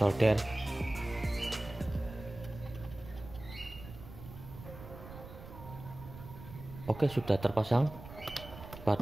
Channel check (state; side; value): noise; right; rumble, 14 dB below the sound